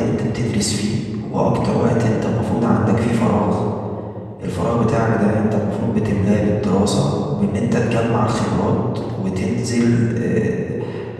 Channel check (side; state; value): both; identical; correlation 1.00